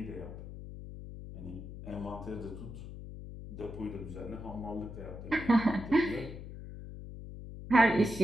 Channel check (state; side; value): noise; left; hum, 11 dB below the sound